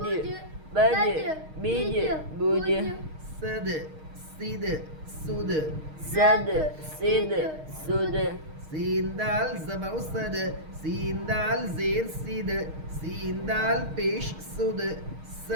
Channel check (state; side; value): late; left; 6.4 ms